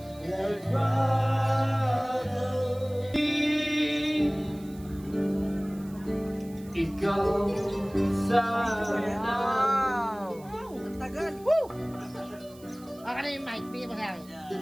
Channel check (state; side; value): noise; right; hiss, 24 dB below the sound